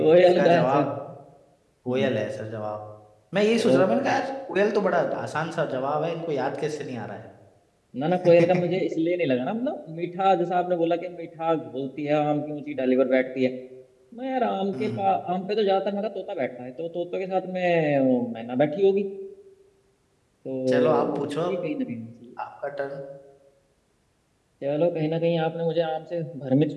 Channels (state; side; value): identical; both; correlation 1.00